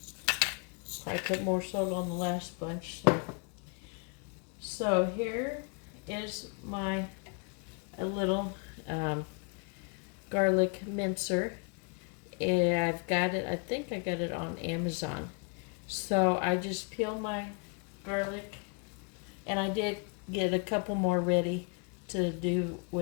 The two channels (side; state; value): right; quieter; 35.5 dB